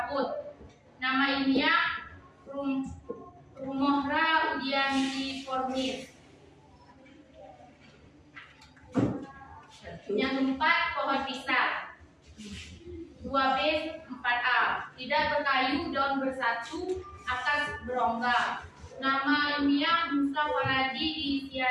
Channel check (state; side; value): identical; both; correlation 1.00